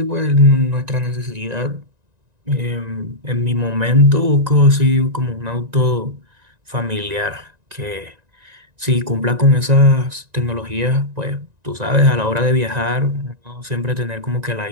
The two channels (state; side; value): late; left; 1.9 ms